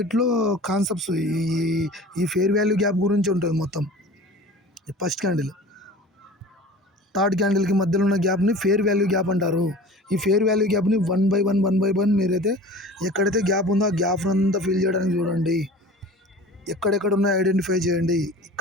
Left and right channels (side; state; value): both; normal; correlation 0.40